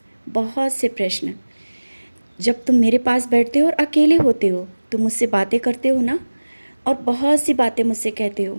बहुत से प्रश्न। जब तुम मेरे पास बैठते हो और अकेले होते हो, तुम मुझसे बातें करते हो ना, और बहुत सी बातें मुझसे कहते हो।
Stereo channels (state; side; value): inverted; both; correlation -1.00